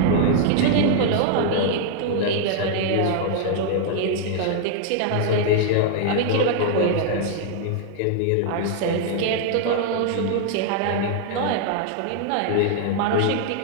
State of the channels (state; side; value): different; both; correlation -0.01